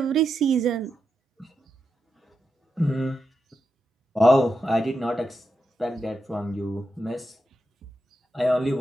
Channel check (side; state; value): both; normal; correlation 0.86